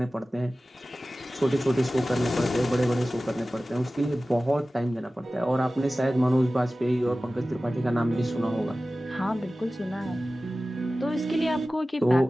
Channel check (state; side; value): normal; both; correlation 0.96